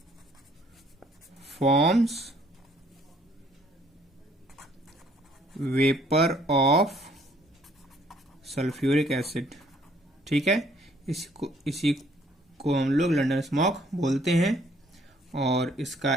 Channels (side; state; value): both; normal; correlation 0.63